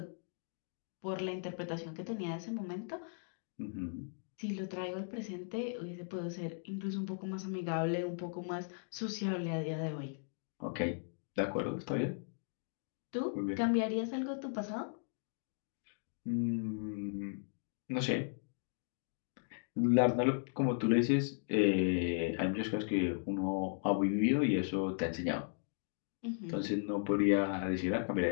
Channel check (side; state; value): right; silent; digital silence